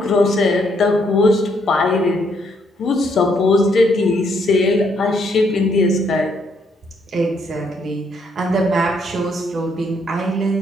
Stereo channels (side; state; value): both; normal; correlation 0.72